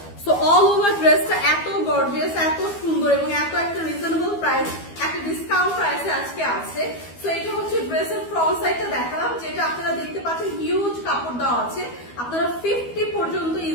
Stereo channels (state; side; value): late; right; 12 ms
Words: সো অল ওভার ড্রেসটা এত গর্জিয়াস, এত সুন্দর এবং এত একটা রিজনেবল প্রাইস, একটা ডিসকাউন্ট প্রাইসে আজকে আছে। সো এটা হচ্ছে ড্রেসের ফ্রন্ট সাইডটা দেখালাম, যেটা আপনারা দেখতে পাচ্ছেন হিউজ কাপড় দেওয়া আছে, আপনারা 50 পর্যন্ত